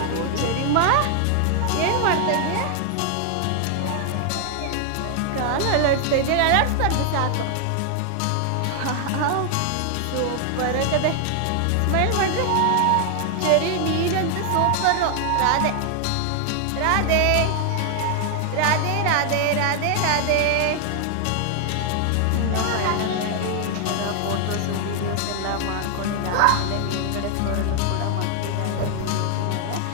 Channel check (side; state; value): both; different; correlation 0.00